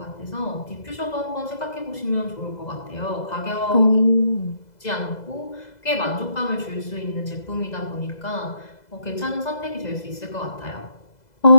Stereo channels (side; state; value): right; late; 2.0 ms